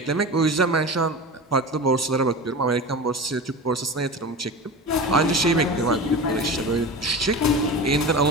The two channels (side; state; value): both; normal; correlation 0.30